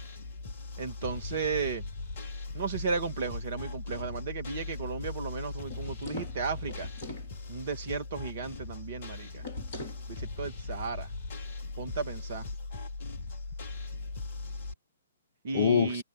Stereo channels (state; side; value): inverted; both; correlation -0.59